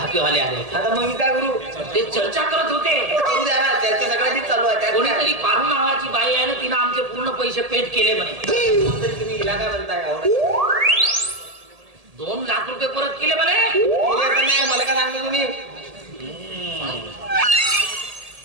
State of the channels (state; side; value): late; left; 1.8 ms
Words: पिवाले आले. आता मग मी काय करू. ते चर्चा करत होते. करू द्या ना. त्याच्या सगळ्यांची चालू आहे. कोणीतरी पारू नावाची बाई आहे ना तिनं आमचे पूर्ण पैसे पेड केले म्हणे. तुम्ही हिला काय म्हणताय. 2 लाख रुपये परत केले म्हणे. नाही मला काय सांगतो तुम्ही.